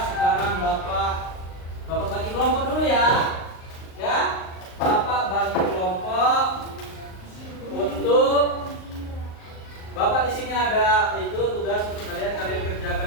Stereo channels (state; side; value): late; right; 38 ms